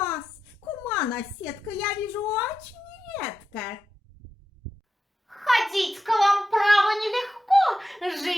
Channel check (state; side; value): normal; both; correlation 0.89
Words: кума наседка, я вижу очень редко. Ходить к вам, право, нелегко,